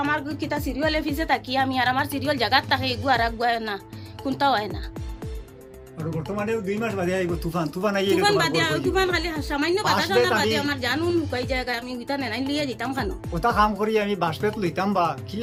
আমার কিতা সিরিয়ালে ফিসে থাকি আমি আর আমার সিরিয়াল জায়গার থাকে এগু আর আগুয়ায় না কোনটাও হয় না আর বর্তমানে 2 মাস বাদে আইব তুফান আইয়ে তুফান বাদে তুফান খালি সামান্য বাতাস না বাদে আমার জানুন লুকাই জায়গা আমি উইতা নেই লিয়ে যেতাম খানো ওটা কাম করি আমি বাসপেট লইতাম বা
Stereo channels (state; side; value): identical; both; correlation 1.00